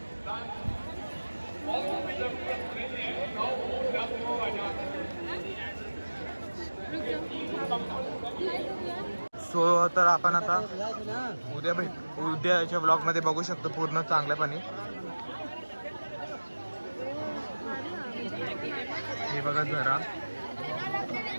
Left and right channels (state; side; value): inverted; both; correlation -1.00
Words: और जरूरत नहीं है सो तर आपण आता उद्याच्या ब्लॉगमध्ये बघू शकतो पूर्ण चांगल्यापणे. हे बघा जरा